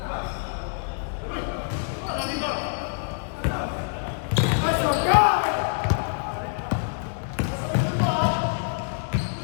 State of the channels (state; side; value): silent; right; digital silence